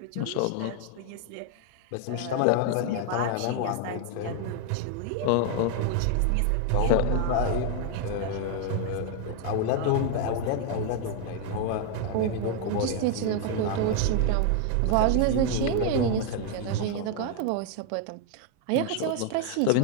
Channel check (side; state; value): both; different; correlation 0.00